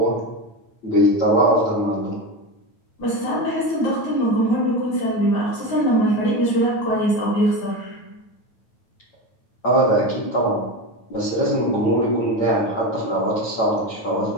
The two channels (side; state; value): right; late; 9.2 ms